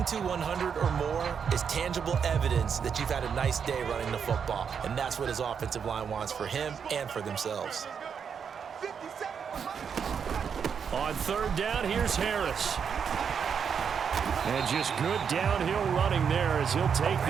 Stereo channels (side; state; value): left; quieter; 6.9 dB